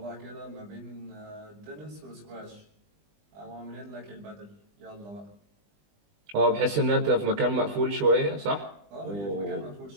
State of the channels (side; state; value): left; late; 20 ms